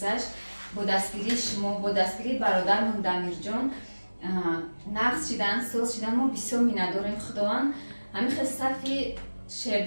با دستگیری برادرمون دمیرجان نقص شدن، سوز شدن. ما بسیار مینداریم خداوند همین خیلی صفی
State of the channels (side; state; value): both; inverted; correlation -1.00